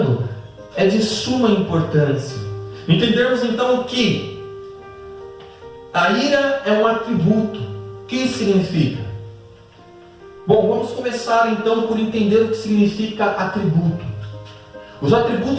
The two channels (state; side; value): identical; both; correlation 1.00